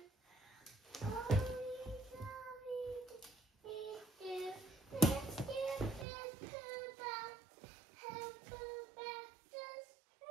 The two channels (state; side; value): drops out; left; at 6.1 s